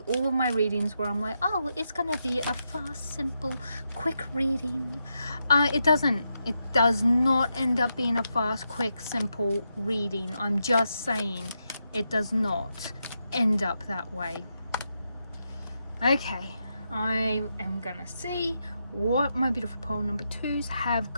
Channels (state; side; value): inverted; both; correlation -0.84